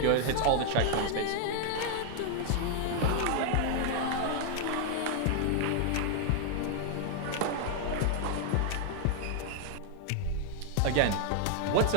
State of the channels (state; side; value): different; both; correlation 0.00